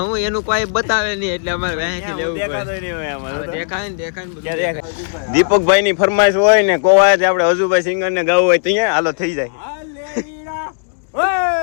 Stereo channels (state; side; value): silent; right; digital silence